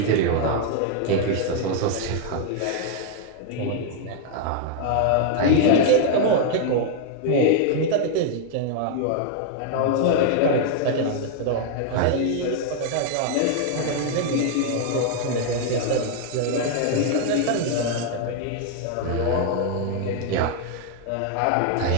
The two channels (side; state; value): both; different; correlation -0.01